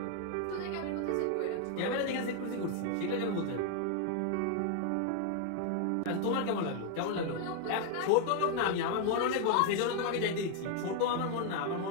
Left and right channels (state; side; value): different; both; correlation 0.00